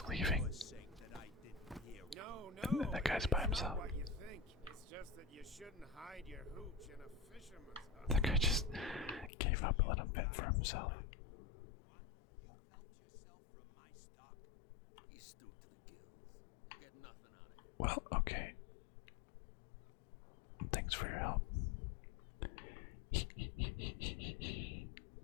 leaving. No. That guy's by it's himself. Not what you think. It's just that you shouldn't hide your hooch in a fisherman's hut. That guy just gave up and let him fend for himself. He's stewed to the gills. Get nothing out of it. Well, okay. Thanks for your help.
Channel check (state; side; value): drops out; right; at 9.3 s